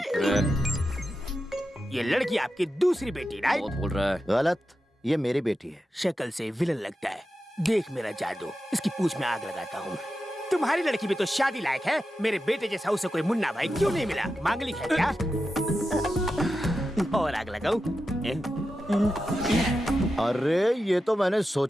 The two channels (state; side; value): normal; both; correlation 0.90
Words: ये लड़की आपकी दूसरी बेटी, राइट? बहुत बोल रहा है। गलत, ये मेरी बेटी है। शक्ल से विलन लगता है। देख मेरा जादू, इसकी पूंछ में आग लगाता हूँ। तुम्हारी लड़की भी तो शादी लायक है। मेरे बेटे जैसा उसे कोई मुन्ना भाई क्यों नहीं मिला? मांगलिक है क्या? और आग लगाऊं? अरे ये तो मैंने